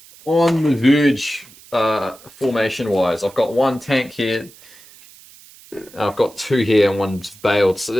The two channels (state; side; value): noise; right; hiss, 23 dB below the sound